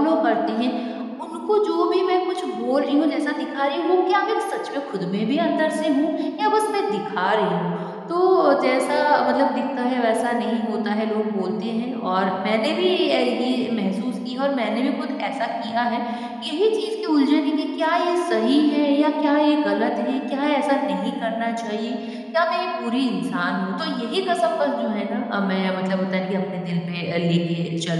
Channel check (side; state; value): both; identical; correlation 1.00